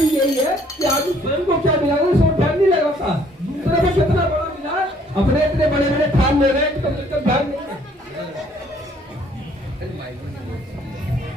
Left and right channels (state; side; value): normal; both; correlation 0.61